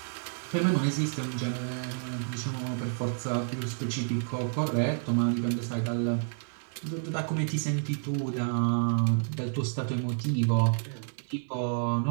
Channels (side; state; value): left; silent; 57 dB below the other